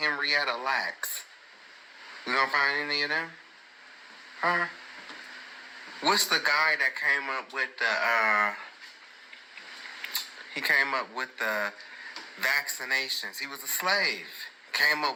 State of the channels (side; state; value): both; identical; correlation 1.00